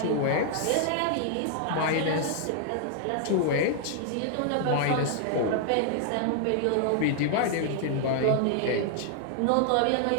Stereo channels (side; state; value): both; different; correlation -0.01